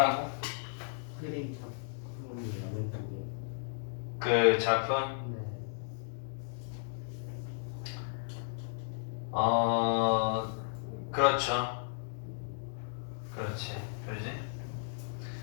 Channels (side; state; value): right; silent; digital silence